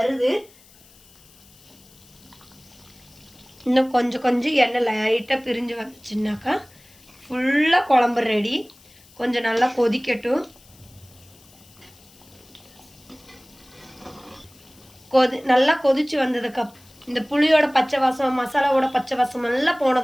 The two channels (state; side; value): noise; left; hiss, 26 dB below the sound